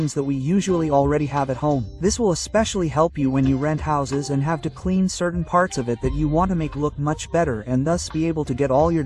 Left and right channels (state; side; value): identical; both; correlation 1.00